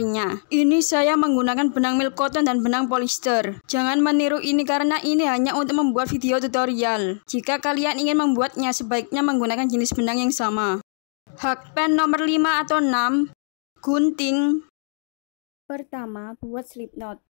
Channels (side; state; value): right; silent; 64 dB below the other